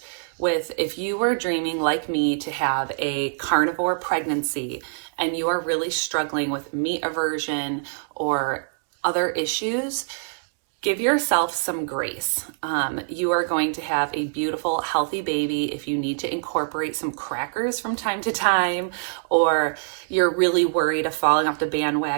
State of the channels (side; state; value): left; silent; 62 dB below the other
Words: with, if you were dreaming like me to have a carnivore pregnancy and you are really struggling with meat aversion or other issues, give yourself some grace. You are going to have a beautiful, healthy baby. If you need to incorporate some crackers from time to time, or you're really worried of falling off the